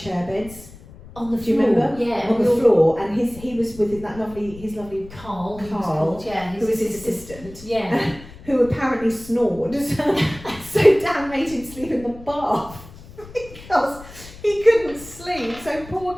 beds. On the floor. Do you remember? Yeah. On the floor, and he was with his lovely Carl, who was his assistant. Yeah. Who apparently snored. So Dan made him sleep in the bath. because he couldn't sleep. So poor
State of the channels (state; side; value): noise; left; rumble, 18 dB below the sound